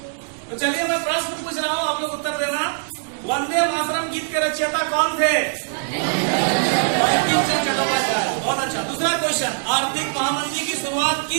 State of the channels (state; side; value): silent; left; 64 dB below the other